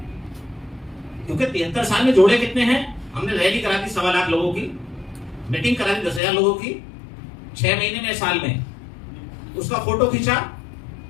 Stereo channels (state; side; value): drops out; right; at 6.2 s